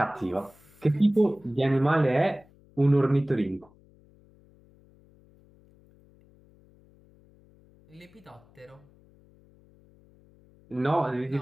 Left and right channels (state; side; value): noise; left; hum, 29 dB below the sound